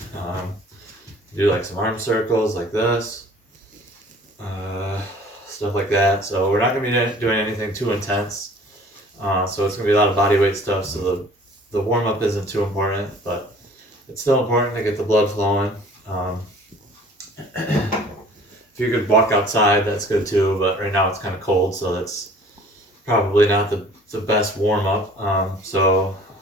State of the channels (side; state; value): both; normal; correlation 0.50